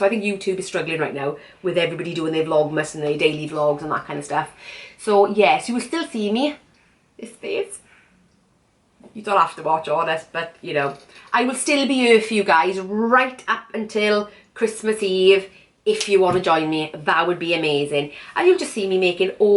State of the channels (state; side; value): identical; both; correlation 1.00